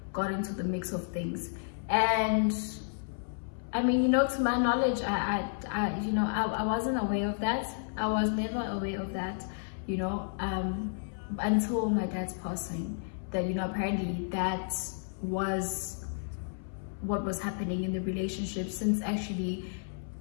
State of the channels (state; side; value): silent; right; 57 dB below the other